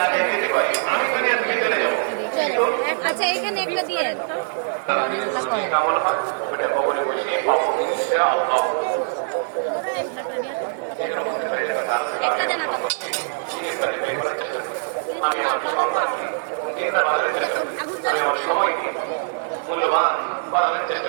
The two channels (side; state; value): left; silent; digital silence